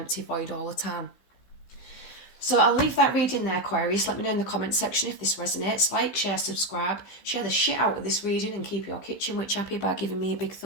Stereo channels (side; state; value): right; late; 15 ms